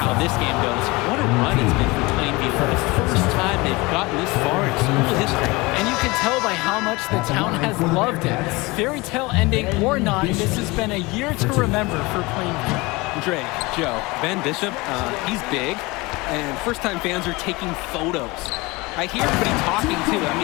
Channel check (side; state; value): right; quieter; 23.6 dB